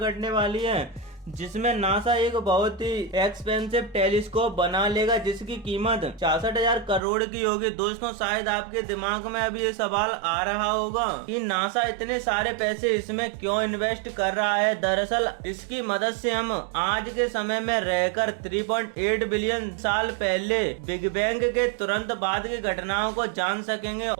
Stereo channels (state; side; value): drops out; left; at 7.0 s